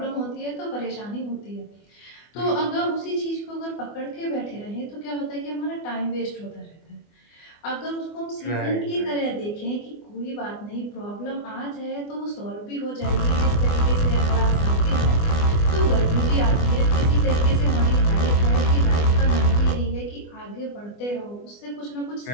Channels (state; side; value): late; right; 24 ms